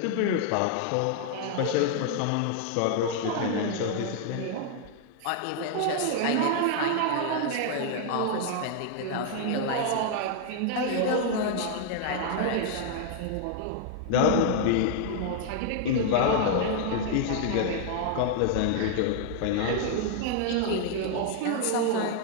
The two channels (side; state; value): both; different; correlation 0.00